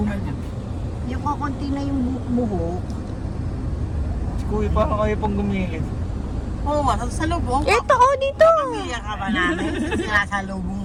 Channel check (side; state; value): both; identical; correlation 1.00